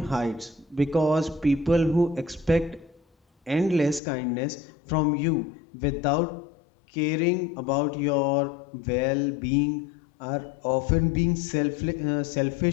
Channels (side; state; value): right; drops out; at 4.0 s